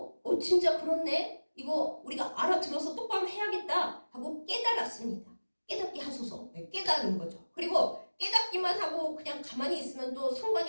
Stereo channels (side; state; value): both; inverted; correlation -1.00